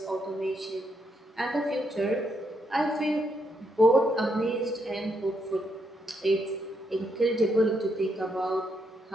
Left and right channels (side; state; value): both; normal; correlation 0.78